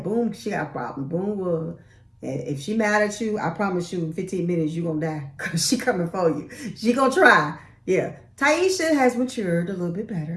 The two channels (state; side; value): identical; both; correlation 1.00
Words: she got a problem. Boom will. If she mad at you, I promise you in 15 minutes you're going to die because she coming for you. She going to try. Yeah. Taisha has matured a little bit